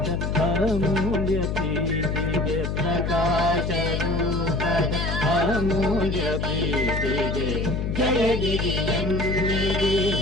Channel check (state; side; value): noise; left; hum, 1 dB below the sound